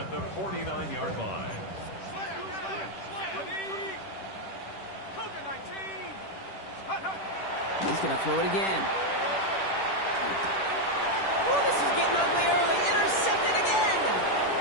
the 49-yard line. He's going to throw it again. Oh, this is getting ugly early. Intercepted again.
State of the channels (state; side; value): late; right; 10 ms